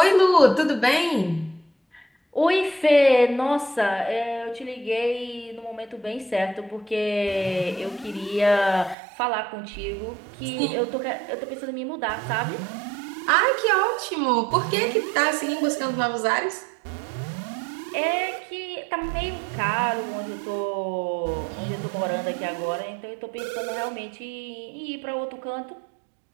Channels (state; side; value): drops out; left; at 9.0 s